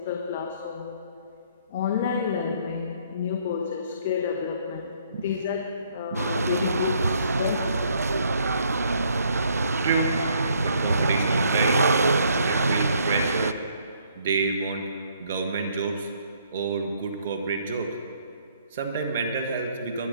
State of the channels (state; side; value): inverted; both; correlation -0.66